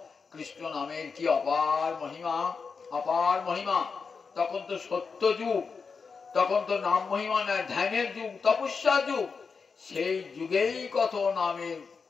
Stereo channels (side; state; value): right; quieter; 5.2 dB